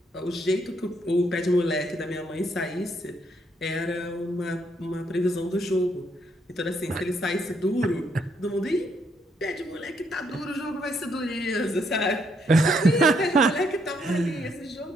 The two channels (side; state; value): both; normal; correlation 0.73